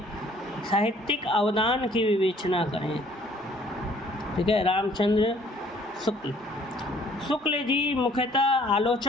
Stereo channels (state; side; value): normal; both; correlation 0.59